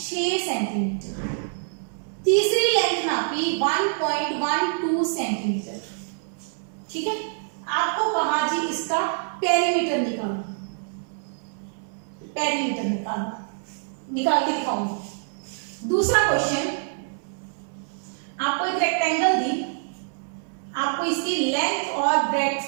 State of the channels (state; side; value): silent; left; 61 dB below the other